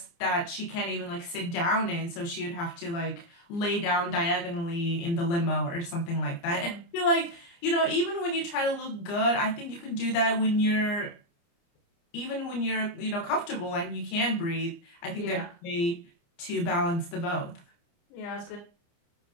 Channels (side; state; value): right; late; 29 ms